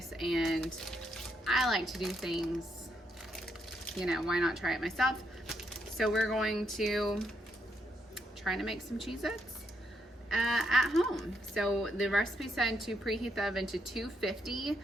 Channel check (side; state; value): both; normal; correlation 0.78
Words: and I like to do things, you know, why not try it myself? So we're going to try to make some Cheez-Its at home. So the recipe said to preheat the oven to 250.